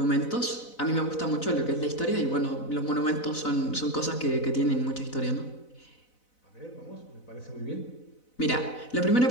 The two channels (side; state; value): right; late; 4.0 ms